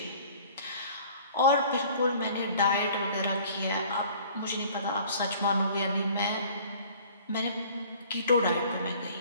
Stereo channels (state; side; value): inverted; both; correlation -0.50